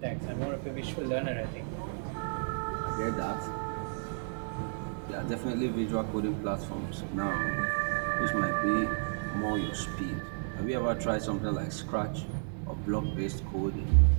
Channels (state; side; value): silent; left; digital silence